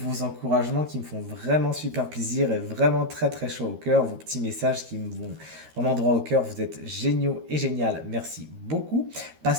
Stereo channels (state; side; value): late; left; 13 ms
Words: encouragements qui me font vraiment super plaisir et vraiment très très chaud au cœur. Vos petits messages qui me vont vraiment droit au cœur. Vous êtes géniaux et génial. Merci beaucoup.